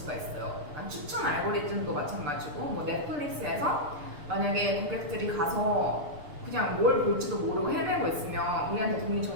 있어요. 추천 알고리즘도 마찬가지고, 넷플릭스에서 만약에 고객들이 가서 그냥 뭘 볼지도 모르고 헤매고 있으면 우리한테 도움이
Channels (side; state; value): left; late; 6.7 ms